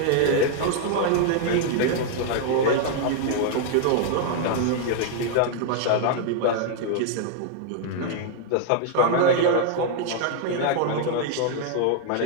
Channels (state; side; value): different; both; correlation 0.00